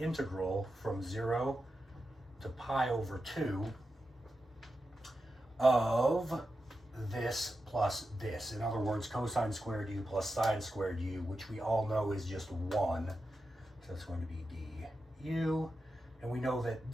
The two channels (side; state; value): both; normal; correlation 0.90